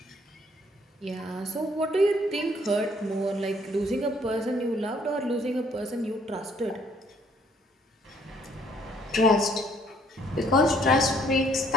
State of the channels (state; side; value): normal; both; correlation 0.65